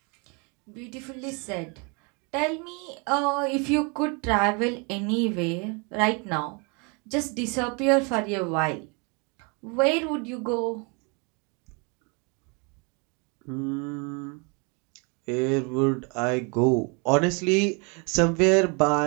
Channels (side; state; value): left; quieter; 32.6 dB